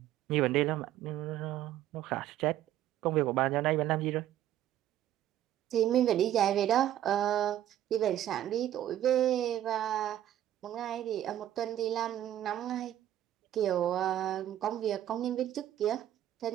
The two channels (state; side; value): quieter; left; 12.1 dB